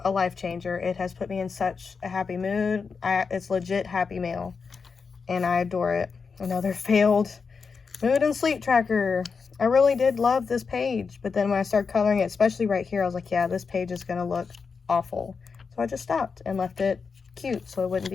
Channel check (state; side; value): quieter; right; 5.3 dB